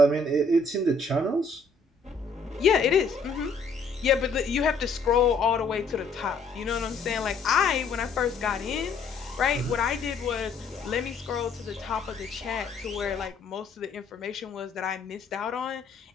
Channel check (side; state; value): right; quieter; 3.9 dB